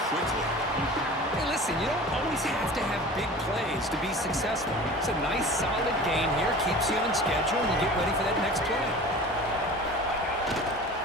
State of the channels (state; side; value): normal; both; correlation 0.39